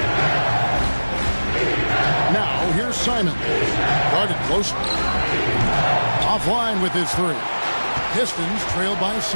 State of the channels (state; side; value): inverted; both; correlation -1.00